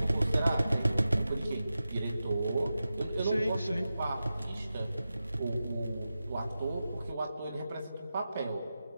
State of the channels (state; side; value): inverted; both; correlation -0.92